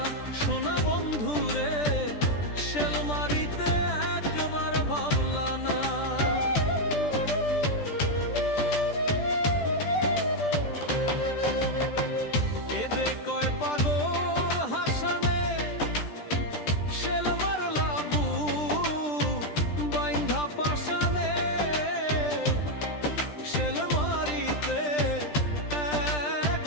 সোনা বন্ধু রে, শেল মারিতে একবার ভাবলা না। কয় পাগল হাসানে, শেল মারলা বুক বাইন্ধা পাশানে, শেল মারিতে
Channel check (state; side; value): late; right; 13 ms